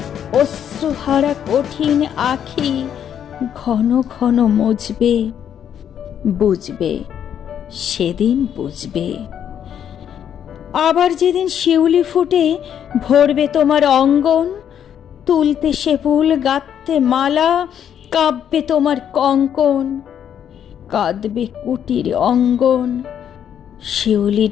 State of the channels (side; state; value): right; quieter; 9.1 dB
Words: অশ্রুহারা কঠিন আখি ঘন ঘন মুছবে, বুঝবে, সেদিন বুঝবে। আবার যেদিন শিউলি ফুটে ভরবে তোমার অঙ্গন, তুলতে সে ফুল গাঁথতে মালা, কাঁপবে তোমার কঙ্কন। কাঁদবে কুটির অঙ্গন, শিউলি